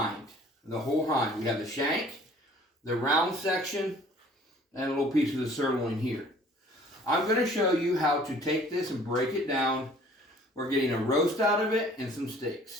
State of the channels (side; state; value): both; normal; correlation 0.53